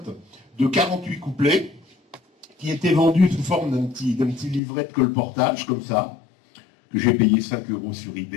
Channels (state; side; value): drops out; right; at 4.6 s